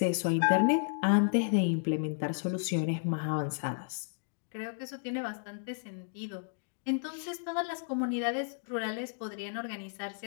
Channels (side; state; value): right; silent; digital silence